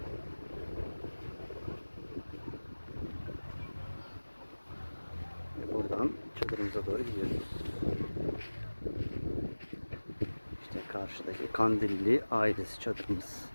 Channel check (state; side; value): inverted; both; correlation -1.00